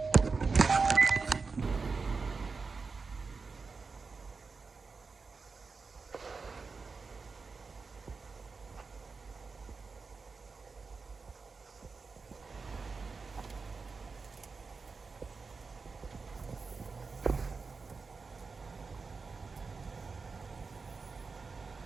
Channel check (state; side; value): quieter; left; 4.6 dB